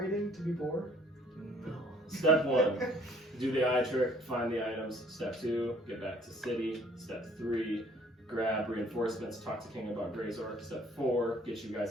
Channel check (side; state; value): both; normal; correlation 0.58